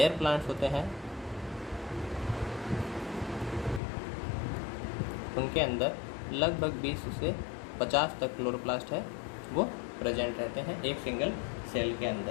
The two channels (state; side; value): drops out; right; at 3.8 s